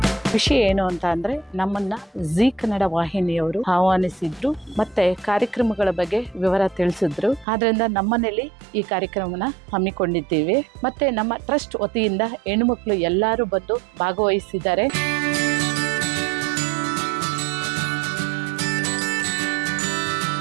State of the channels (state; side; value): drops out; left; at 7.5 s